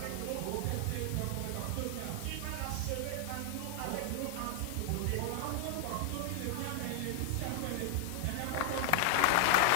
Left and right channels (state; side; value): different; both; correlation 0.00